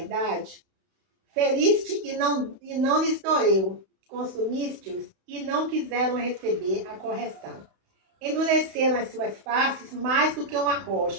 Feriste e não lhes doeu. Consumiste-os e não quiseram receber a correção. Endureceram as suas faces mais do que uma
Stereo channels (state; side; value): late; left; 31 ms